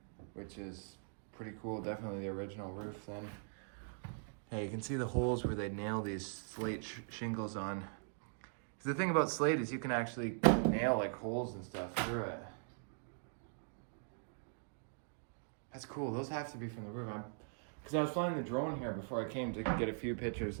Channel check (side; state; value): left; silent; digital silence